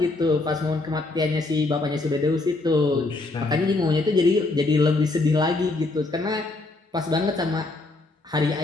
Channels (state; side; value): quieter; right; 3.1 dB